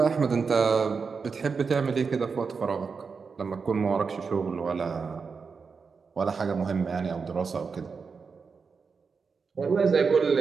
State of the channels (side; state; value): left; quieter; 5.2 dB